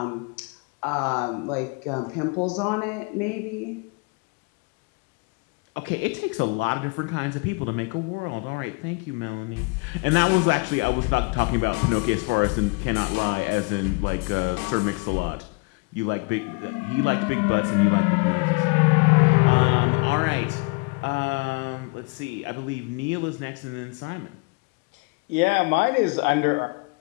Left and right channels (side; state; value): right; quieter; 30.2 dB